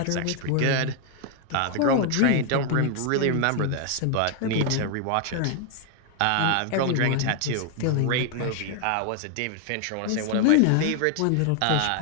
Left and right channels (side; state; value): both; different; correlation 0.00